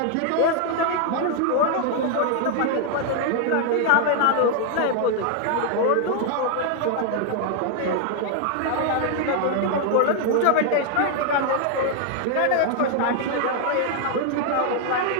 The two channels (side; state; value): both; different; correlation 0.00